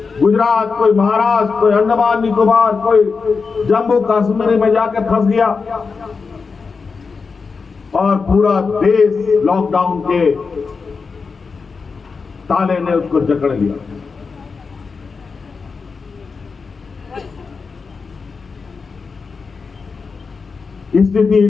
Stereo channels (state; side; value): quieter; right; 4.9 dB